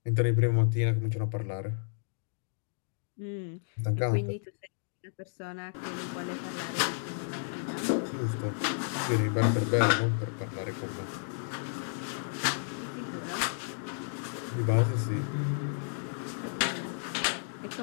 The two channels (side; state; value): right; silent; digital silence